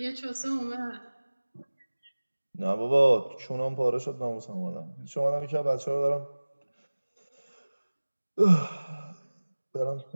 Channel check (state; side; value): inverted; both; correlation -1.00